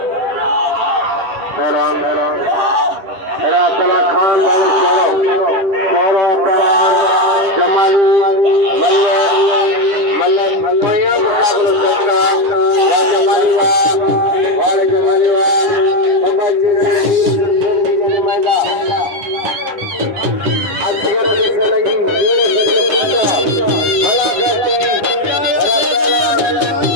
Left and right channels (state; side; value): late; left; 10 ms